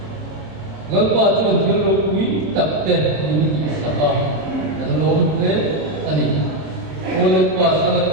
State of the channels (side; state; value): left; late; 26 ms